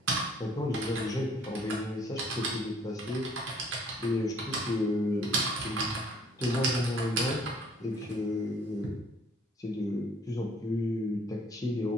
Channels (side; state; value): both; normal; correlation 0.59